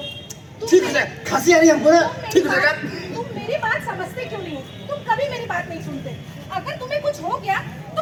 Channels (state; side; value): identical; both; correlation 1.00